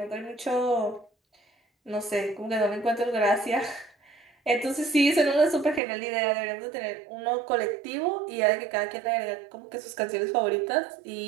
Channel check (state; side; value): drops out; left; at 5.8 s